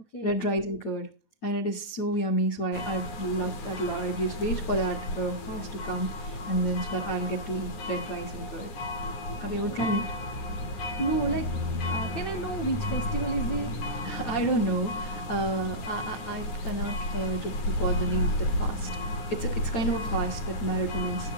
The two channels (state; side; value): late; right; 9.5 ms